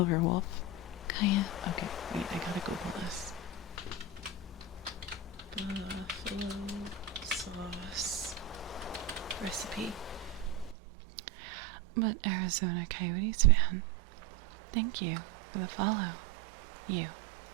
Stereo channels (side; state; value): left; drops out; at 10.8 s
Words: Kaya. Okay, wait, I gotta Google this. Buffalo sauce recipe. But Arizona Coyotes fan, thank you for the follow. You